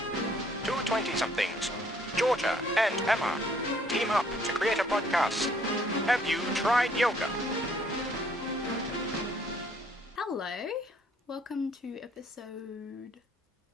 Two 20-somethings, Georgia and Emma, team up to create a podcast. Have you tried yoga? Hello, welcome to episode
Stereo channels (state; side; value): normal; both; correlation 0.63